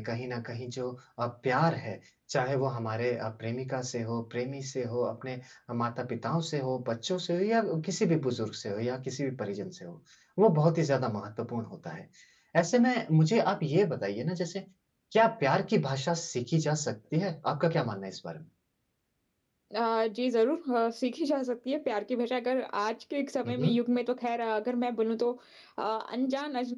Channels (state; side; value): identical; both; correlation 1.00